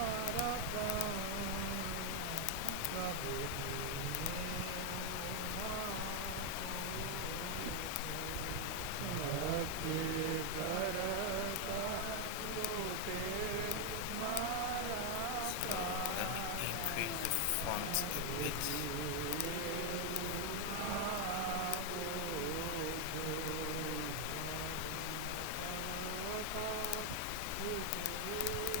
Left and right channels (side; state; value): both; different; correlation 0.00